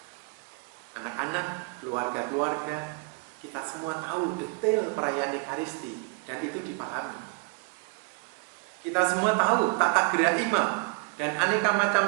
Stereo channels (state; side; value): quieter; left; 32.1 dB